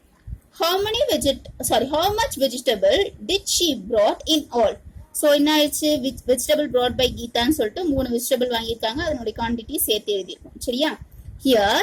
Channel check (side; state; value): both; identical; correlation 1.00